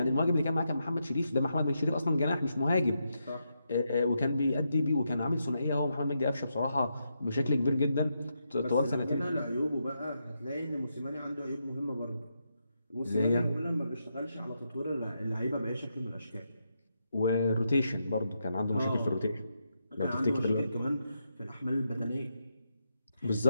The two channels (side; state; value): both; inverted; correlation -0.83